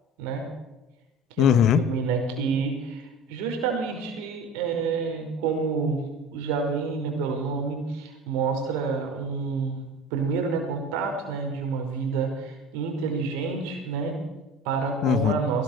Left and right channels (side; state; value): both; normal; correlation 0.37